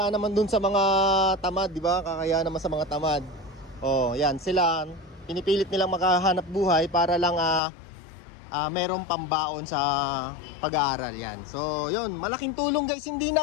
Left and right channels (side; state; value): right; drops out; at 7.6 s